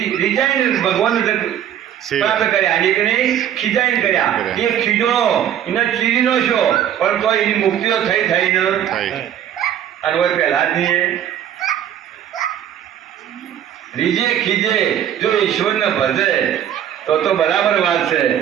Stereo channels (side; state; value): left; quieter; 10.2 dB